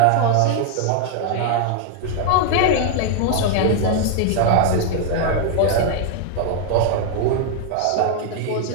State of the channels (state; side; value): different; both; correlation 0.00